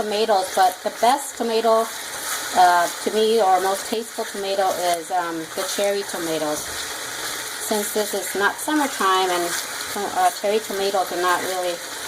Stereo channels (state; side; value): identical; both; correlation 1.00